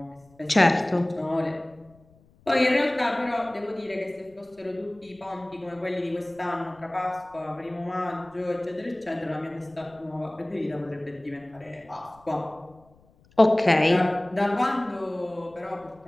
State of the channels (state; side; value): noise; left; rumble, 29 dB below the sound